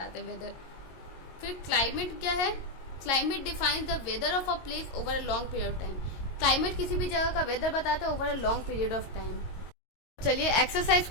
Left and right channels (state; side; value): late; right; 22 ms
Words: हैं वेदर। फिर क्लाइमेट क्या है, climate defines the weather of a place over a long period of time. Climate किसी भी जगह का वेदर बताता है over a long period of time. चलिए एक्सरसाइज